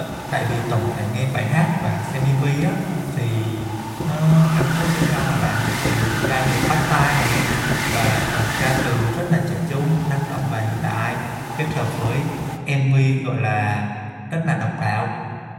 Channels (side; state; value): both; identical; correlation 1.00